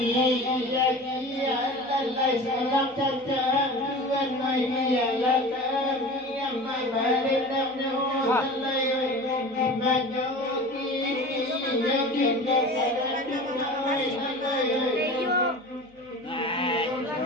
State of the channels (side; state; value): right; noise; hum, 29 dB below the sound